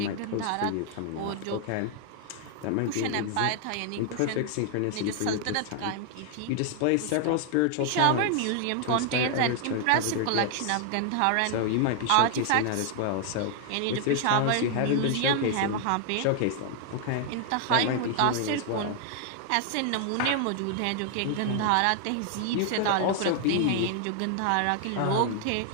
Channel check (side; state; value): both; different; correlation 0.00